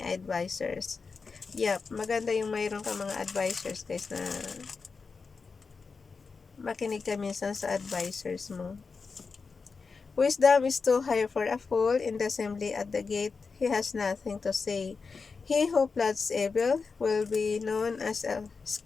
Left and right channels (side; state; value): right; quieter; 4.8 dB